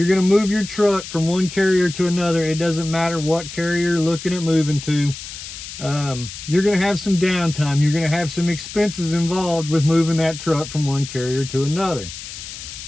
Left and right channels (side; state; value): left; noise; hiss, 11 dB below the sound